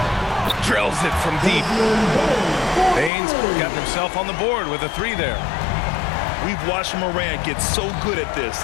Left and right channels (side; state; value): right; drops out; at 3.1 s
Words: drills it from deep. Bain's gotten himself on the board with a three there. We've watched Morant get so good at this.